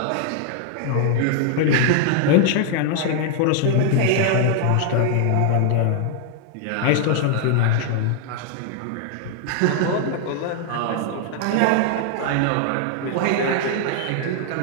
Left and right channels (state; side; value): different; both; correlation -0.01